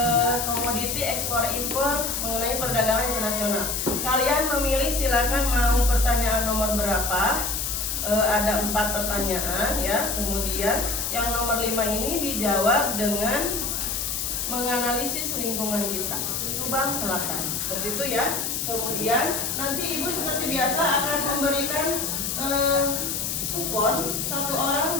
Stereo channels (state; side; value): noise; left; hiss, 2 dB below the sound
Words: komoditi ekspor impor mengenai perdagangan internasional. Kalian memilih, silakan mau pertanyaan nomor berapa. Ada 4 pertanyaan ya. Kemudian yang nomor 5 ini dijawab dengan menganalisis lingkungan kita, Subang Selatan. Seperti itu ya. Kemudian nanti ibu seperti biasa akan memberikan kupon, 1 orang